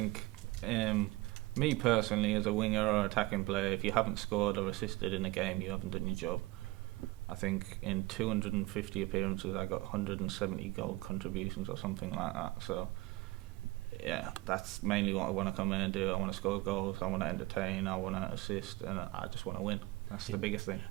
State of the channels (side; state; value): left; quieter; 20.5 dB